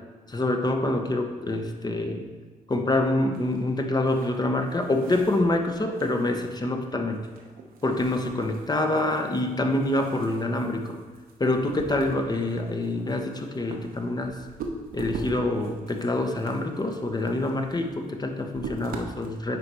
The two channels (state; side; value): normal; both; correlation 0.68